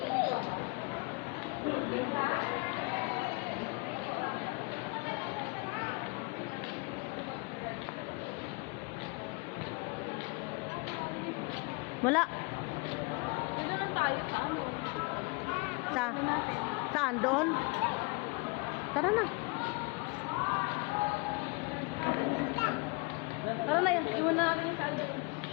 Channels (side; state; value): right; quieter; 29.0 dB